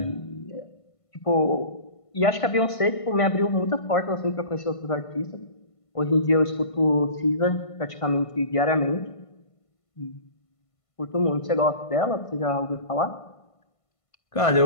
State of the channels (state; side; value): late; right; 1.5 ms